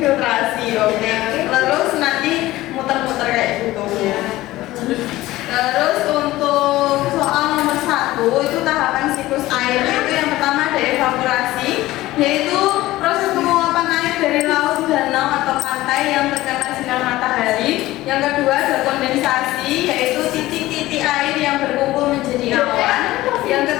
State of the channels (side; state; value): right; quieter; 17.0 dB